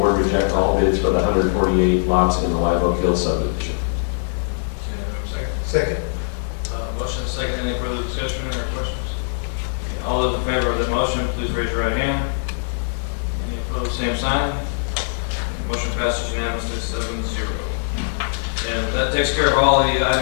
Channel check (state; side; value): silent; right; 56 dB below the other